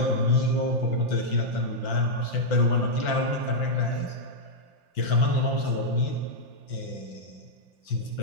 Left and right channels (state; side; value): late; right; 5.7 ms